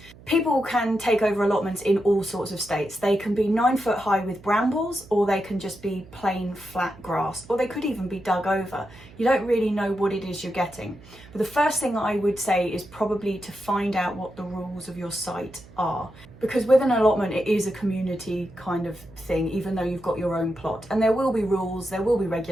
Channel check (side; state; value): right; noise; hum, 21 dB below the sound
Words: People can take over allotments in all sorts of states. They can be 9 foot high with brambles, or they can just be plain flat grass, or they could even be dug over. You don't really know what it is you're getting. But the first thing I would say is probably to find out what the rules of your site are. Because with an allotment, it is a community kind of thing, even though you've got your own plot. And there will be rules, there will be